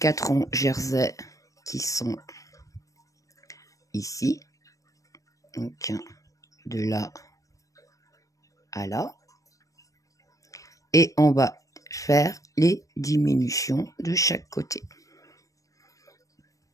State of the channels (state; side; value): late; right; 0.16 ms